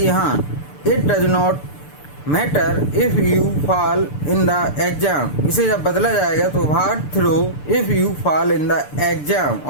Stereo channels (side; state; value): right; late; 6.8 ms